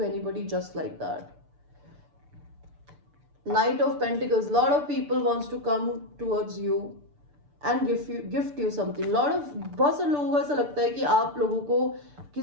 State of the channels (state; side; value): late; left; 6.8 ms